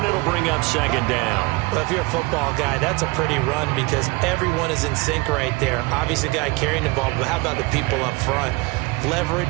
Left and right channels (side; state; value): left; quieter; 24.4 dB